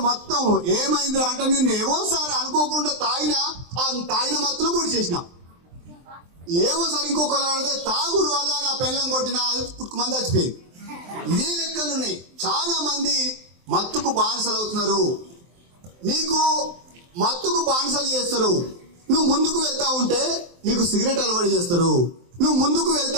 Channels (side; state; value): left; late; 23 ms